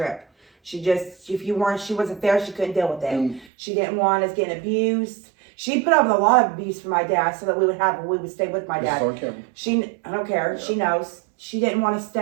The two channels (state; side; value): drops out; left; at 3.5 s